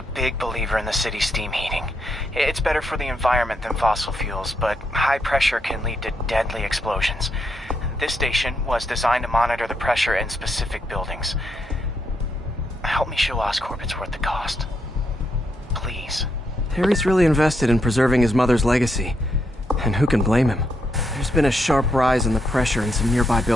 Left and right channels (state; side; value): normal; both; correlation 0.79